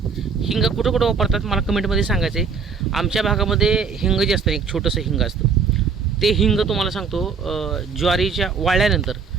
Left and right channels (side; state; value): left; quieter; 5.5 dB